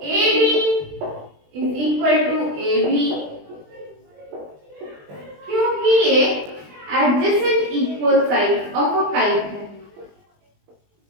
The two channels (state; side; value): late; left; 20 ms